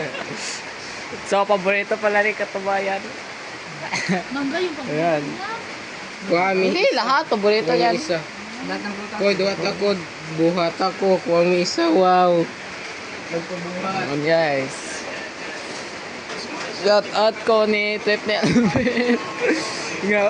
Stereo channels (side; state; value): both; identical; correlation 1.00